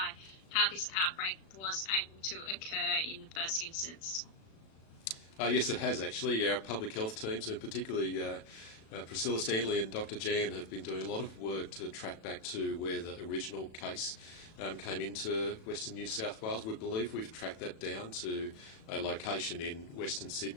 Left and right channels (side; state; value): right; late; 36 ms